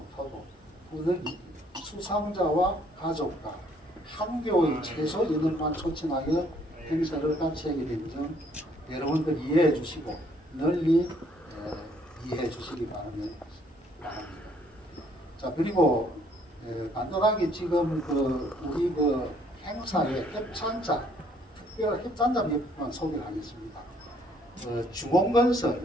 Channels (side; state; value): both; normal; correlation 0.64